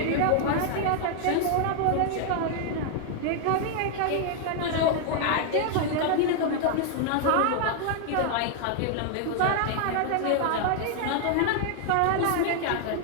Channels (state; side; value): different; both; correlation 0.00